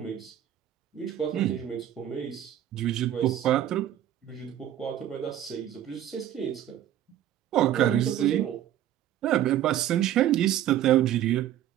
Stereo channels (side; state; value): left; quieter; 11.7 dB